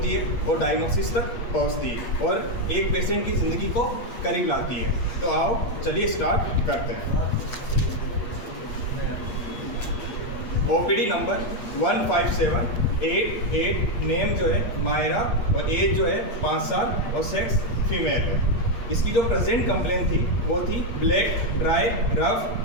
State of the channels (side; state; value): right; late; 8.5 ms